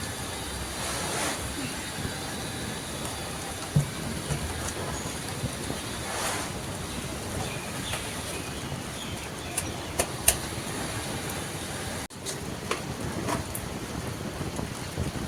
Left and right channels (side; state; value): both; identical; correlation 1.00